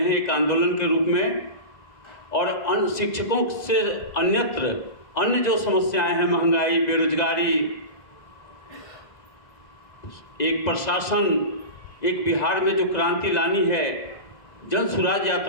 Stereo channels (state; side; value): late; right; 2.0 ms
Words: एक आंदोलन के रूप में, और अन्य शिक्षकों से अन्य जो समस्याएं हैं, महंगाई, बेरोजगारी, एक प्रशासन, एक बिहार में जो क्रांति लानी है, जन सुराज